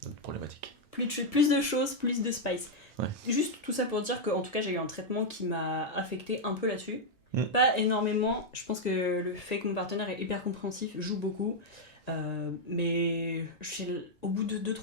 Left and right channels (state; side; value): normal; both; correlation -0.01